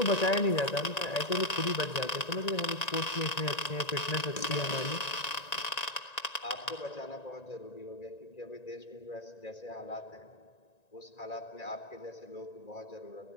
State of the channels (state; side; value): late; right; 1.9 ms